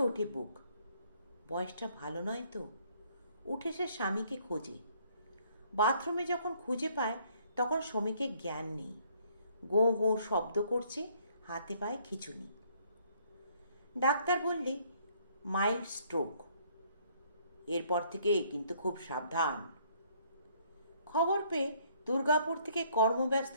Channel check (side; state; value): both; inverted; correlation -0.64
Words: ওঠে বুক। বয়সটা ভালো নয় তো। উঠে সে স্বামীকে খোঁজে। বাথরুমে যখন খুঁজে পায়, তখন শ্রমিকের জ্ঞান নেই। গো গো শব্দ করছে, হাতে পায়ে খিঁচুনি। ডাক্তার বললে মাইল্ড স্ট্রোক। এরপর থেকে কিন্তু খুব সাবধান। খবর পেয়ে দুর্গাপুর থেকে কর্মব্যস্ত